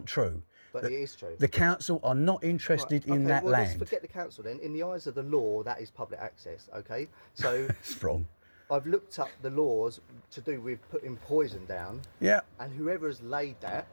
true. But it is true. The council are not interested in that Let's land. forget the council then. In the eyes of the law, that is public access. Okay, so It's wrong. I've looked up the laws to do with putting poison down, Yeah, and whoever has laid that,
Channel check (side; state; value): both; inverted; correlation -1.00